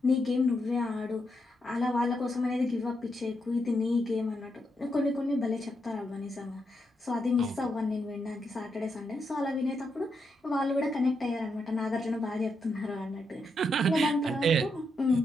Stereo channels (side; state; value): both; normal; correlation 0.82